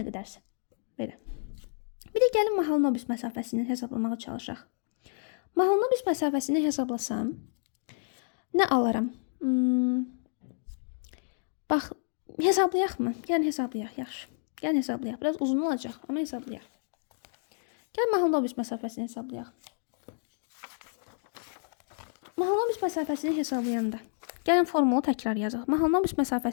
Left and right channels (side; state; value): right; silent; digital silence